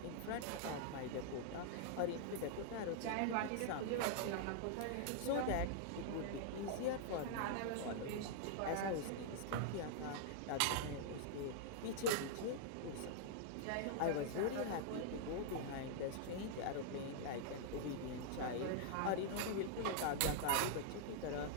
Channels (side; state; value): both; different; correlation -0.01